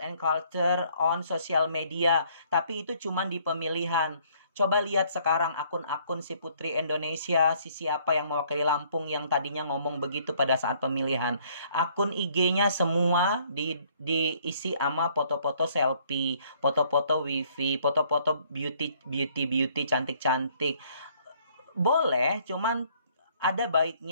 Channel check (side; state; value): both; inverted; correlation -0.63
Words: culture on social media. Tapi itu cuman di pemilihan. Coba lihat sekarang akun-akun si Putri Indonesia, si siapa yang mewakili Lampung yang tadinya ngomong begitu pada saat pemilihan. Akun IG-nya semua diisi sama foto-foto selfie, foto-foto wifi, foto-foto beauty, cantik-cantik. Boleh, cuman ada